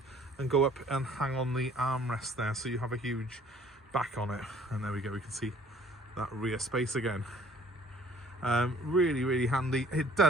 and go up and hang on the armrest there, so you have a huge back on it. And there we go, we can see that rear space again. Really, really handy. It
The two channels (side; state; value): both; normal; correlation 0.56